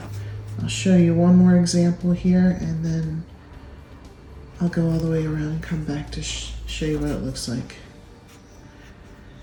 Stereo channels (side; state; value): both; identical; correlation 1.00